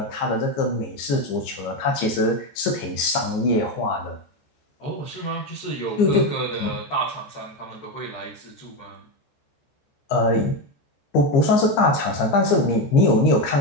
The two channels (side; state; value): right; late; 15 ms